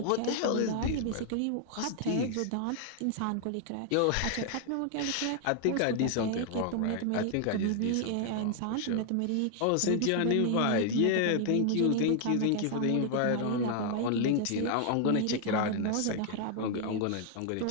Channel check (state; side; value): different; both; correlation 0.00